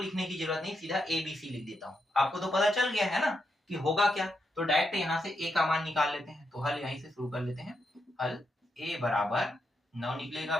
की जरूरत नहीं, सीधा ए बी सी लिख देता हूँ। आपको तो पता चल गया है ना कि होगा क्या, तो डायरेक्ट यहाँ से ए का मान निकाल लेते हैं। तो हल यहीं से शुरू कर लेते हैं। हल ए बराबर 9 निकलेगा,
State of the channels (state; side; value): normal; both; correlation 0.83